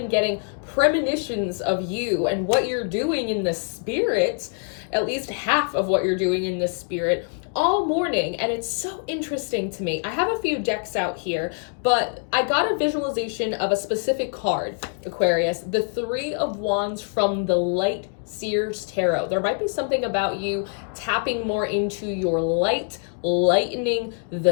getting premonitions of you and what you're doing in the spirit, at least half of what you're doing in the spirit, all morning, and it's so interesting to me. I have a few decks out here, but I got a visualization of a specific card, Aquarius, the Three of Wands from the Light Seers Tarot. There might be something about you tapping more into your light, lightening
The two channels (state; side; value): silent; right; 60 dB below the other